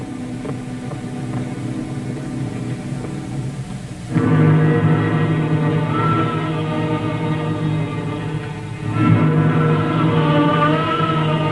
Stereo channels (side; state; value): both; identical; correlation 1.00